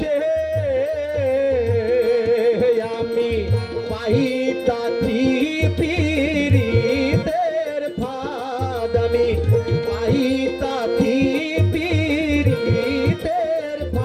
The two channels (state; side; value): identical; both; correlation 1.00